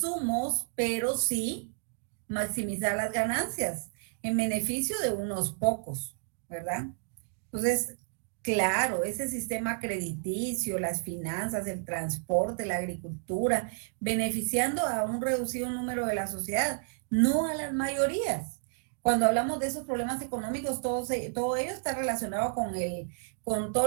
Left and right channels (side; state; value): left; silent; digital silence